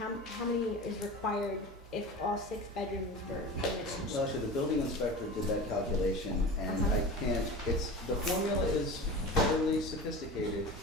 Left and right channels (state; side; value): normal; both; correlation 0.32